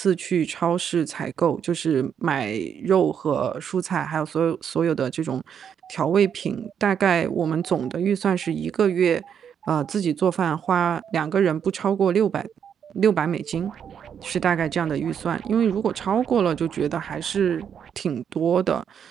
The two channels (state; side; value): quieter; left; 8.0 dB